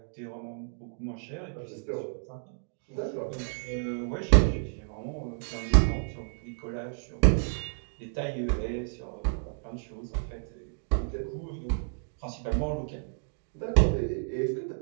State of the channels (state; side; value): silent; left; digital silence